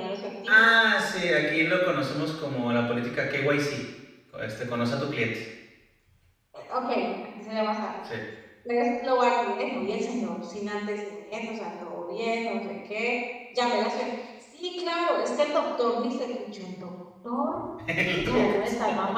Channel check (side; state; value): both; identical; correlation 1.00